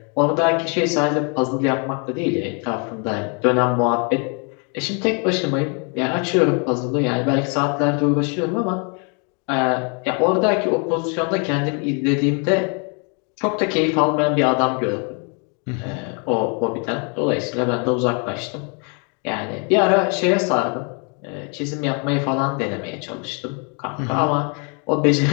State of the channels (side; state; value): right; quieter; 36.7 dB